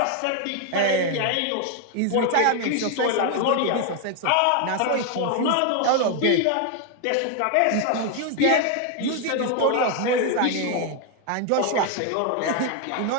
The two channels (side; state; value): both; different; correlation 0.01